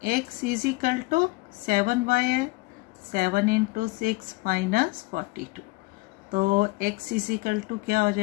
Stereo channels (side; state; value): right; quieter; 23.5 dB